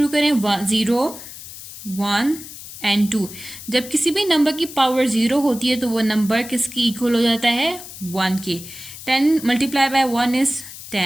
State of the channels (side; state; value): left; noise; hiss, 13 dB below the sound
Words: करें, 0 1 एंड 2। जब किसी भी नंबर की पावर 0 होती है तो वो नंबर किसकी इक्वल हो जाता है, 1 के। 10 multiply by 1 is